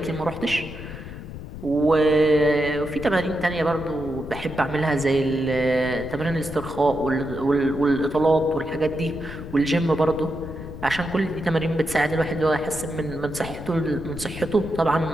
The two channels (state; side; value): noise; left; rumble, 11 dB below the sound